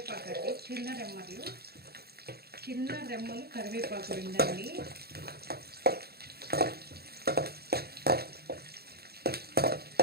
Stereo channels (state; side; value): late; left; 0.46 ms